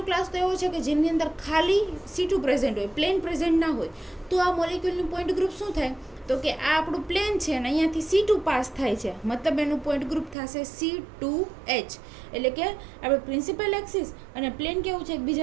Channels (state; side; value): drops out; left; at 10.4 s